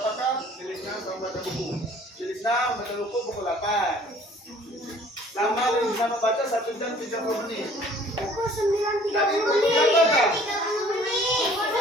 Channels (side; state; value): both; normal; correlation 0.53